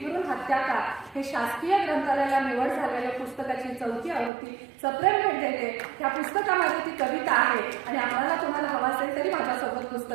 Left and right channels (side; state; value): left; drops out; at 4.3 s